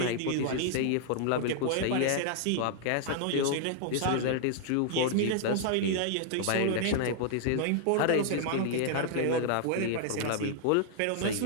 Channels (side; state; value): both; different; correlation -0.01